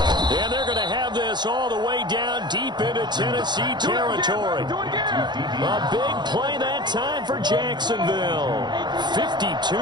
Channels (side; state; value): left; late; 0.21 ms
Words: they're going to have this all the way down deep into Tennessee territory. A big play that time for Jacksonville. 52